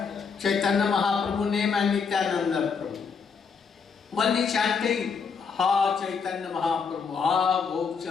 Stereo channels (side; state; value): right; quieter; 5.7 dB